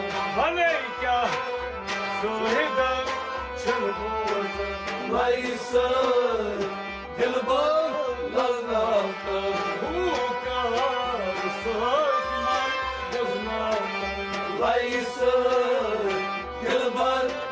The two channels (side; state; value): both; identical; correlation 1.00